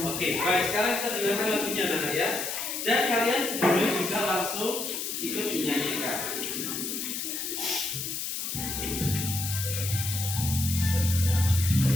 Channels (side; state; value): left; noise; hiss, 4 dB below the sound